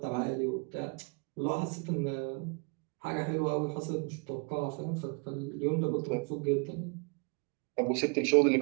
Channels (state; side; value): quieter; left; 34.0 dB